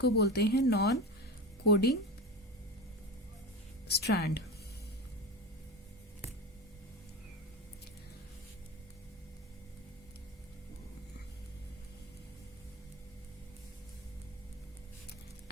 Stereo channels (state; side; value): normal; both; correlation 0.25